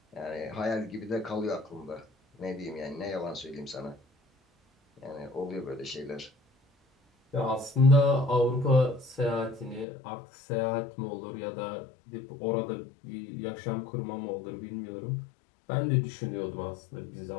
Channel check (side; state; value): right; drops out; at 9.9 s